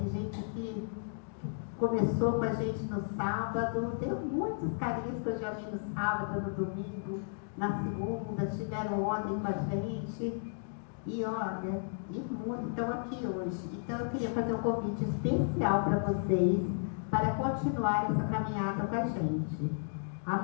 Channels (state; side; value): silent; right; digital silence